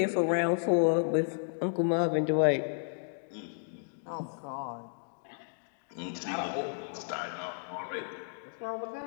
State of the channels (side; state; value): right; silent; digital silence